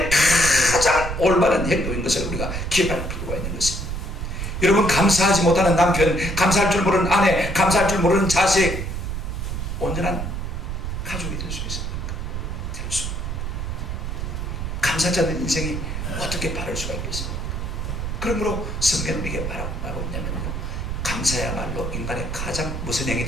가장 올바른 행동인 것을 우리가 기억할 필요가 있는 것입니다. 여러분, 감사하지 못하는 남편, 감사할 줄 모르는 아내, 감사할 줄 모르는 자식, 온전한 가족이 될 수 있습니까? 될 수. 감사하지 않는 인생이 어떻게 바를 수가 있겠습니까? 그러므로 성경은 이게 말하고 있냐면요, 감사야말로 인간의 가장 무슨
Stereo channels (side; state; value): right; noise; rumble, 4 dB below the sound